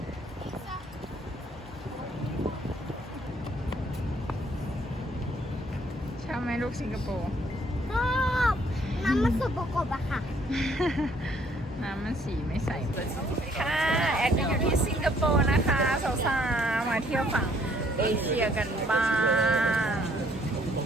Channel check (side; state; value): both; normal; correlation 0.64